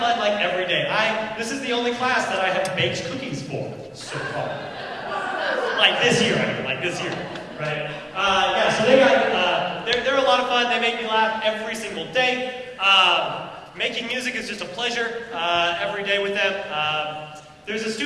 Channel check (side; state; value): both; identical; correlation 1.00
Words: like every day. This is the only class that I have baked cookies for so far. Like this year, I mean, like this year, right? Yeah, so they're a lot of fun. They make me laugh every single day. Making music is just a pleasure every day with them. There's a